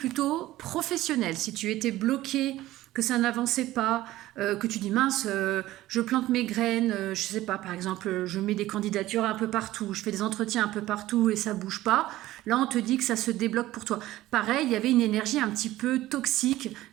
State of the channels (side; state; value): left; quieter; 15.8 dB